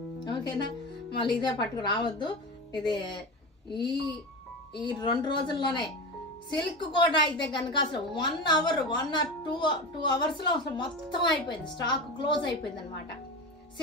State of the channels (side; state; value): both; normal; correlation 0.24